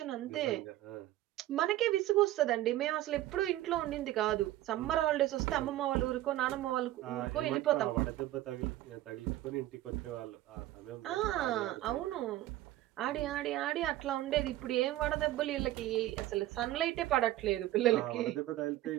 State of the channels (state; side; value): quieter; left; 15.0 dB